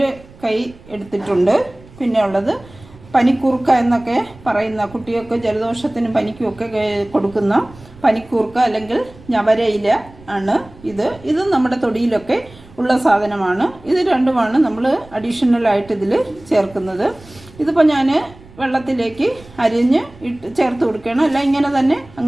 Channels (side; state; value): right; noise; rumble, 22 dB below the sound